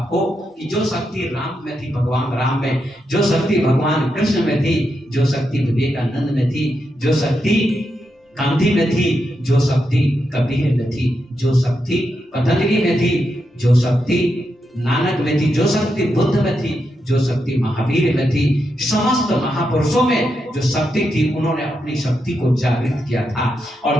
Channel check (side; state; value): both; normal; correlation 0.84